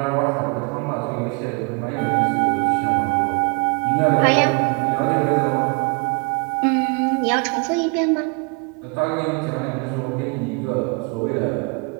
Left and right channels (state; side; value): quieter; left; 32.6 dB